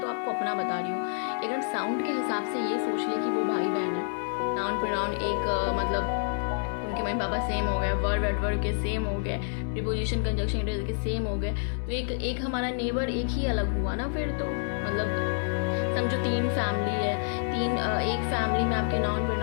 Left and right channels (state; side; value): silent; right; digital silence